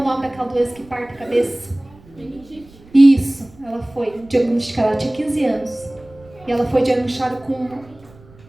nome daquela doença que parte a cabeça? Meningite. Isso, ela foi diagnosticada, ela tinha 15 anos. E ela foi diagnosticada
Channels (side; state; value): right; noise; rumble, 25 dB below the sound